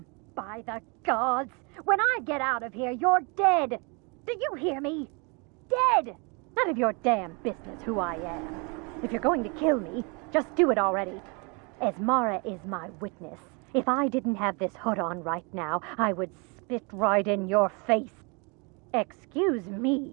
By the gods. When I get out of here, you're dead. Do you hear me? Dead. None of your damn business who I am. If you're going to kill me, just do it already. Esmara is my witness. If I didn't have this hood on right now, I would spit right in your face. Excuse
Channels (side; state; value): left; quieter; 31.8 dB